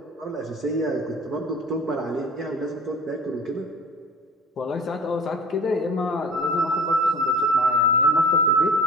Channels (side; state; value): both; normal; correlation 0.41